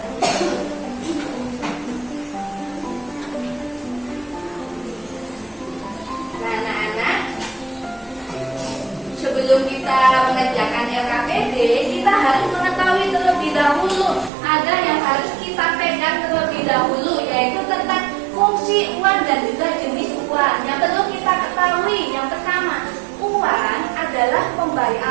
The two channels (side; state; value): left; drops out; at 14.3 s